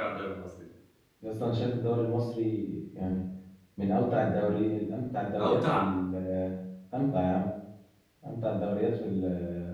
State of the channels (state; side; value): identical; both; correlation 1.00